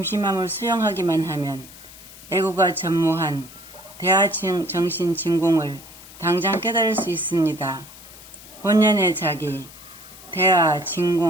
수용하기만 하면 에고가 전무한 대하정신 진공을 당장 깨달을 수 있습니다. 본연의 자기, 대하,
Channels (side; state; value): left; noise; hiss, 18 dB below the sound